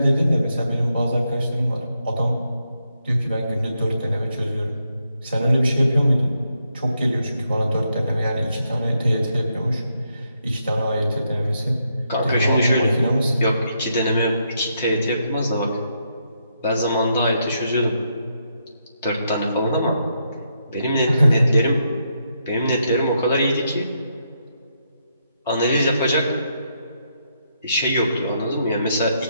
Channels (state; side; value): inverted; both; correlation -0.79